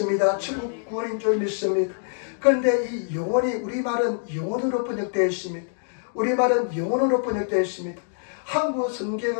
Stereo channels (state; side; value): silent; right; digital silence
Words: 천국 구원인 줄 믿습니다. 그런데 이 영혼이, 우리말은 영혼으로 번역되어 있습니다. 우리말은 영혼으로 번역되어 있습니다. 한국